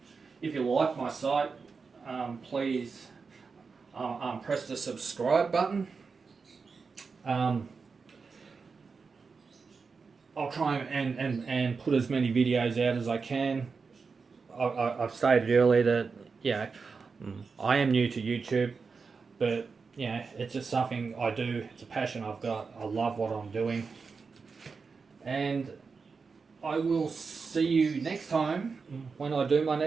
If you like my site, please press the subscribe button. I'll try and put as many videos out as I can. I've stated earlier that, yeah, I am new to YouTube, but yeah, it's just something I do. It's a passion I've got. I love what I'm doing. And I will see you next time when I do my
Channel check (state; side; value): quieter; left; 4.9 dB